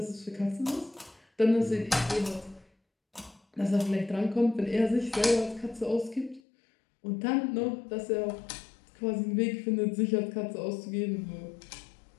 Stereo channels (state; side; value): drops out; right; at 6.4 s